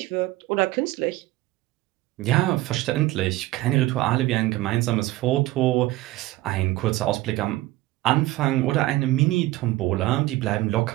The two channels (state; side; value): quieter; left; 17.6 dB